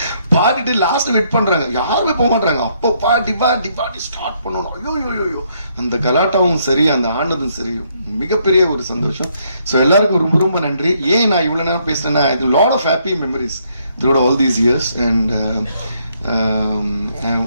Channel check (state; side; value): inverted; both; correlation -0.71